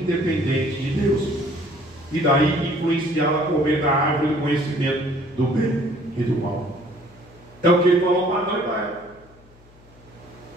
de Deus e daí influenciá-lo a comer da árvore do conhecimento do bem e do mal. É o que ele falou para Adão e para Eva.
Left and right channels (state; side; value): noise; left; hum, 26 dB below the sound